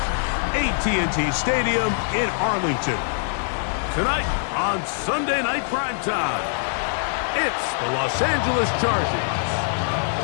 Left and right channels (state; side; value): silent; right; digital silence